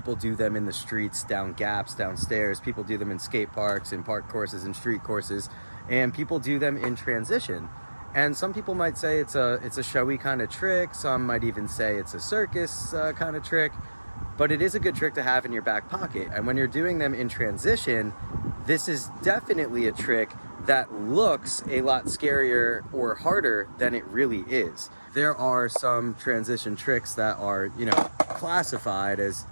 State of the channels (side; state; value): both; inverted; correlation -1.00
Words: do them in the streets, down gaps, downstairs. People do them in skate parks, in park courses, and street courses, and people do them in transition. And some people might say it's a showy kind of trick. Some might even say it's a circus kind of trick, but it is a good trick to have in your back pocket. And when you're doing them in transition, this is definitely a trick that looks a lot scarier or harder than it really is. There are some transition tricks that are, classified as